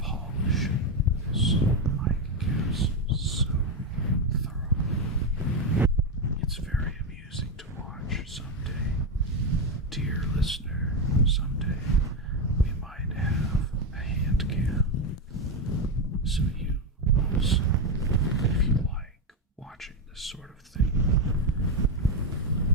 So you also, if you like watching this sort of thing,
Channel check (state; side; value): normal; both; correlation 0.09